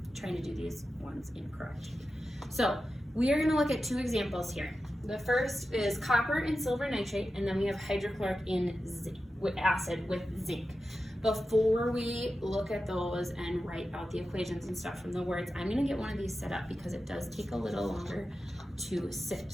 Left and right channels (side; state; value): both; normal; correlation 0.92